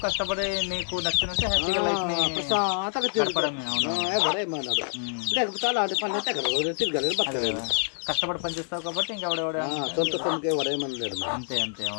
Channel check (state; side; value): silent; right; 60 dB below the other